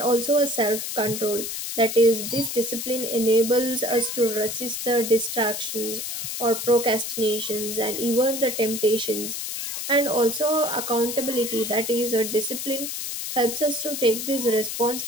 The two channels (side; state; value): left; noise; hiss, 5 dB below the sound